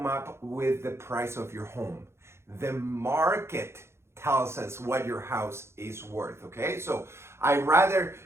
up with the price of your home. The market tells us what your house is worth, okay? So I rather,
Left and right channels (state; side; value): late; left; 0.13 ms